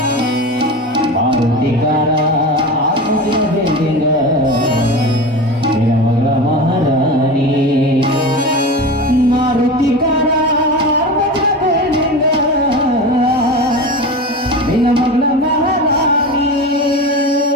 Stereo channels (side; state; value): both; normal; correlation 0.27